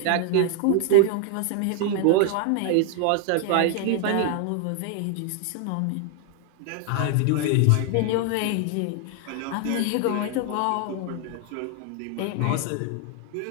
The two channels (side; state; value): both; different; correlation 0.00